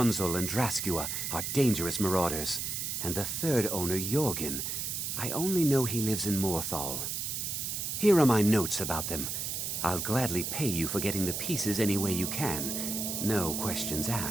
and Draskua, are dangerous marauders, and the 3rd owner, Jorgen, I only know he lives in Morthal. Here are my notes about them. I'll gladly pay you for getting the pieces any way you can. No questions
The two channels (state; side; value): noise; right; hiss, 3 dB below the sound